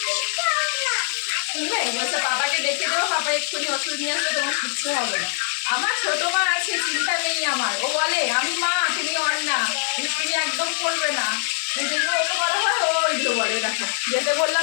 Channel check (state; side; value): silent; right; 63 dB below the other